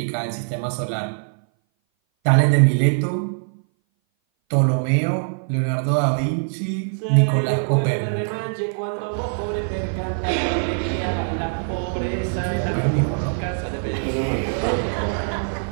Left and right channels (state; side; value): silent; left; 59 dB below the other